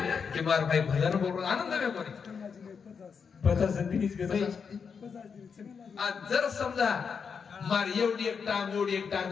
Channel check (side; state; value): right; quieter; 6.1 dB